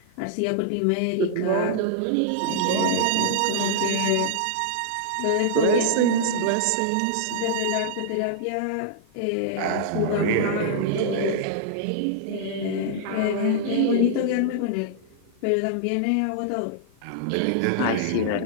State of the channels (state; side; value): different; both; correlation -0.01